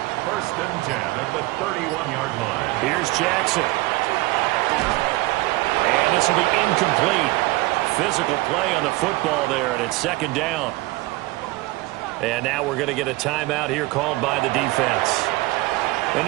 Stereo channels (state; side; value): quieter; left; 20.6 dB